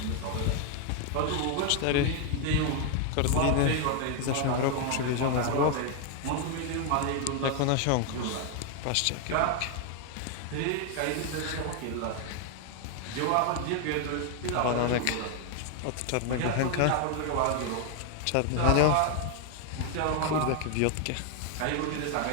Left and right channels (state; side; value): different; both; correlation 0.00